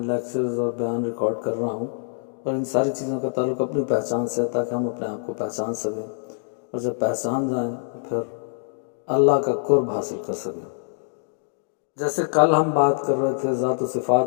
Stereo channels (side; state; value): right; silent; digital silence